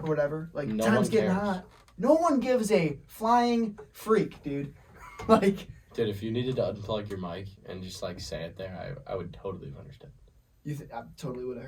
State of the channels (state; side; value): identical; both; correlation 1.00